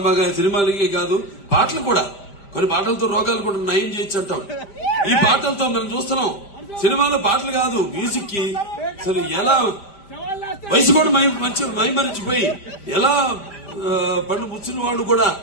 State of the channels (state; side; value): late; right; 5.0 ms